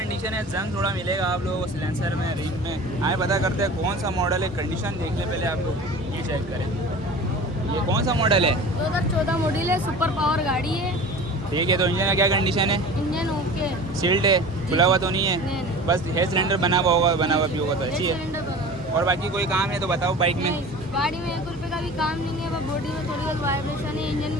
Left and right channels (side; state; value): both; normal; correlation 0.38